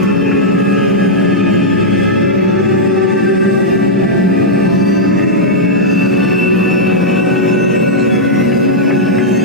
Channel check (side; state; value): both; normal; correlation -0.07